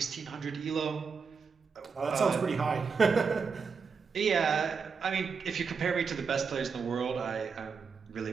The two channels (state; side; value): quieter; left; 5.5 dB